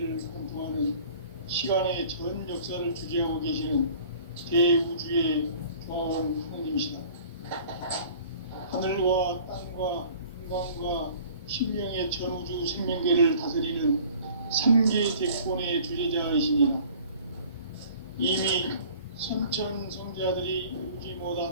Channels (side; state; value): both; inverted; correlation -0.49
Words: 관통하는 시간의 전 역사를 주재하고 계시는 대우주의 종합원 하나님이시다. 하늘과 땅과 인간과 신명의 전우주 생명계를 다스리는 삼계 대권의 주제자이시니라. 이미 선천 성자들이 이루지